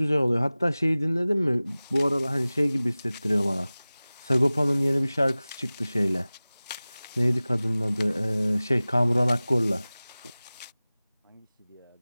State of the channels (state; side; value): inverted; both; correlation -0.98